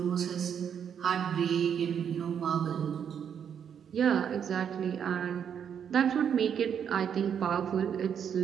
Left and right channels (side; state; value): left; quieter; 8.1 dB